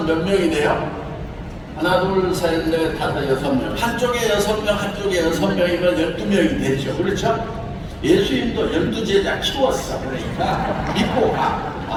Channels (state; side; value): identical; both; correlation 1.00